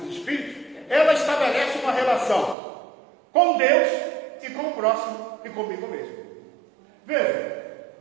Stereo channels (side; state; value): left; drops out; at 2.6 s